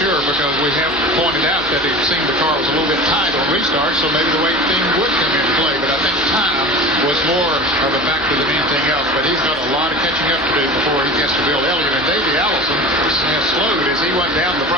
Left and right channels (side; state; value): both; normal; correlation 0.34